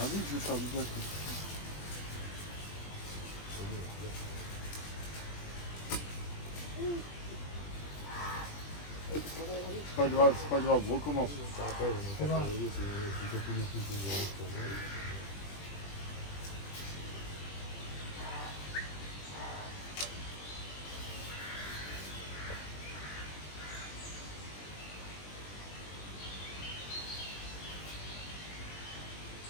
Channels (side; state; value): right; late; 20 ms